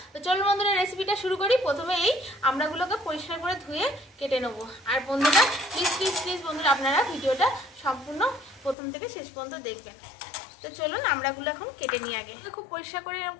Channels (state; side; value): drops out; right; at 8.8 s